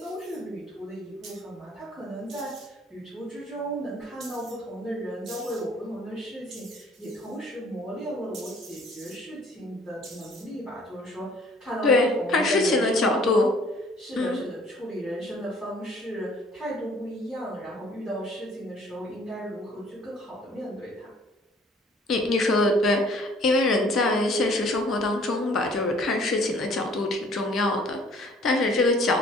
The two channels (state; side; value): normal; both; correlation 0.56